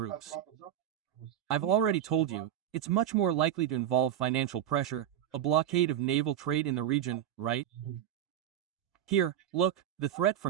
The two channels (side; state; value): left; quieter; 10.9 dB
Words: I've already told you, it's much more likely to involve financial pressure, a blockade of naval trade in the region, right? Here, look, the threat